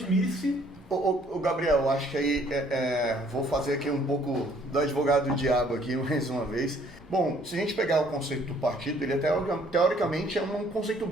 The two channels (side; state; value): both; normal; correlation 0.61